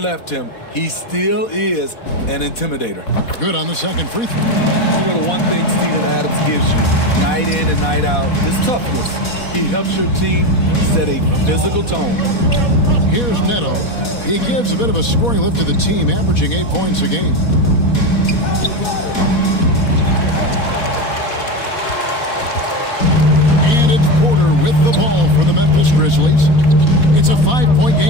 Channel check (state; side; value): late; right; 4.1 ms